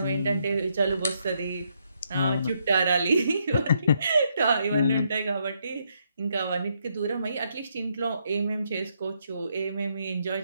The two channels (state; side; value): inverted; both; correlation -0.76